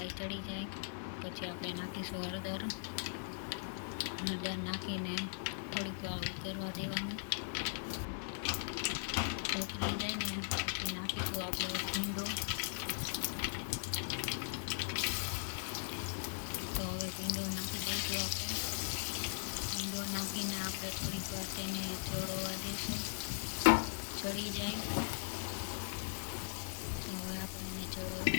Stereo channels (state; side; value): silent; right; 52 dB below the other